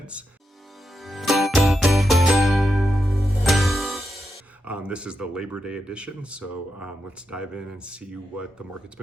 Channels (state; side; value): normal; both; correlation 0.86